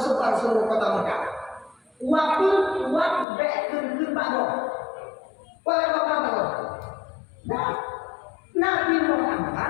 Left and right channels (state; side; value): drops out; right; at 3.2 s